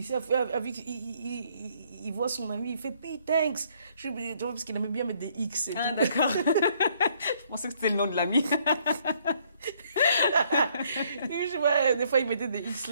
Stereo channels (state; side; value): inverted; both; correlation -0.66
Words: voit son ami, il fait P, thanks. Parce qu'il aimait bien mettre des X. Et tout. D'accord. Je pensais que c'était le nom de l'ami. Des fois, il mettait des X